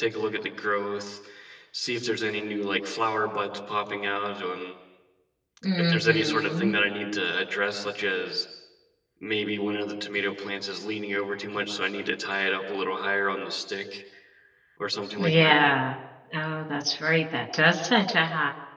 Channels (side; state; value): both; identical; correlation 1.00